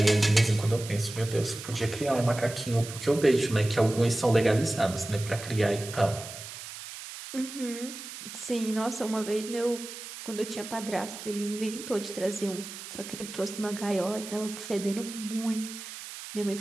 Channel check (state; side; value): noise; right; hiss, 11 dB below the sound